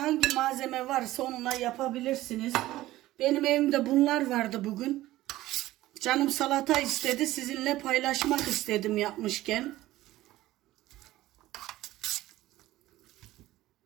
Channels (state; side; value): quieter; left; 16.2 dB